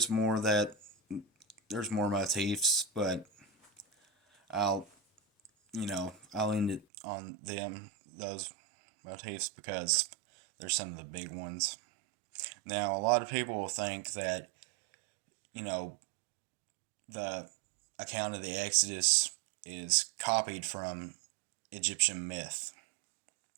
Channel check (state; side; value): drops out; left; at 6.9 s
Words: more motifs, but I'll end it on those motifs, because they're some of the big ones. Now, a lot of people will think that, the account of the Exodus is copied from Egyptian myth.